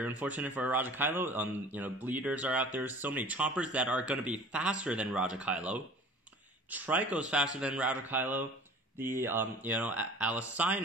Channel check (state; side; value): normal; both; correlation 0.44